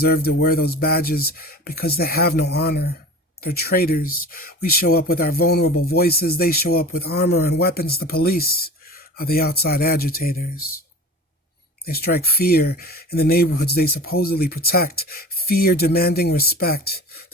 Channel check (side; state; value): both; normal; correlation 0.37